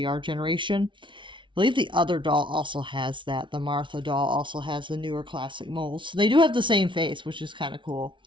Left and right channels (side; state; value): left; late; 0.24 ms